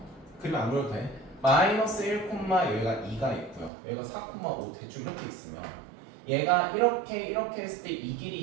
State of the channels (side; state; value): left; drops out; at 3.7 s